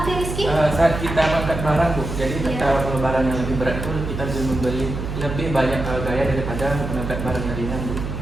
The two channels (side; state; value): right; noise; hum, 5 dB below the sound